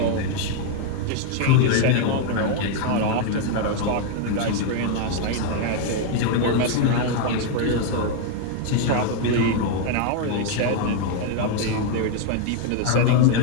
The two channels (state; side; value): different; both; correlation 0.00